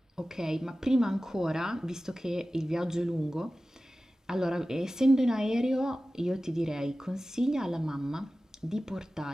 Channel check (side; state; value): both; normal; correlation 0.95